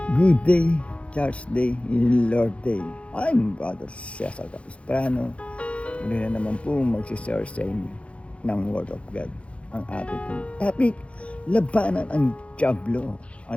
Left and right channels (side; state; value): right; late; 0.061 ms